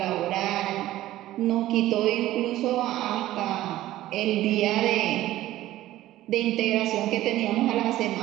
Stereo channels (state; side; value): quieter; left; 15.0 dB